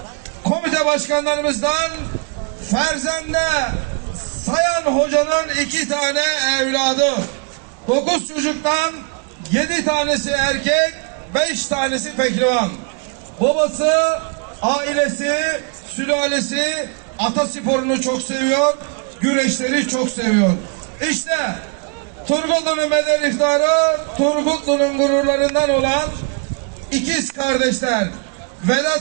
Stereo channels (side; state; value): left; quieter; 35.5 dB